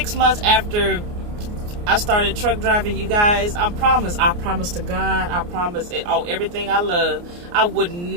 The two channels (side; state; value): left; late; 29 ms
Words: months after I started truck driving, you guys, I promise to God, I promise it, everything I love, I would